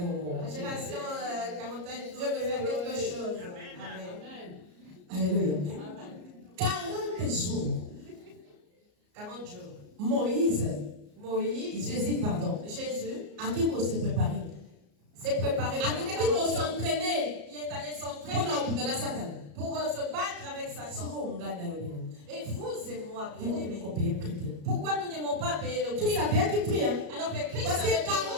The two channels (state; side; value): late; left; 34 ms